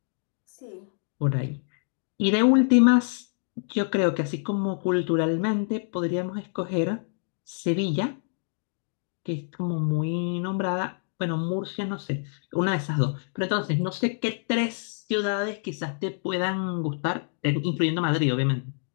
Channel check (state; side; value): silent; right; digital silence